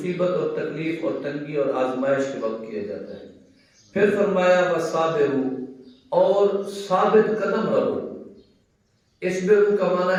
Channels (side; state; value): both; identical; correlation 1.00